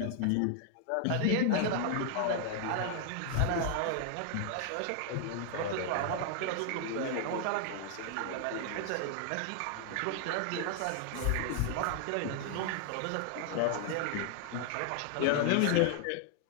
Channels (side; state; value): both; different; correlation 0.00